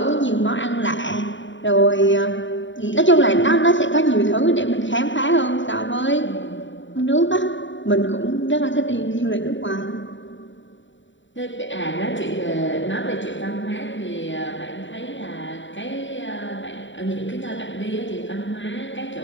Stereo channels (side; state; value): right; late; 0.54 ms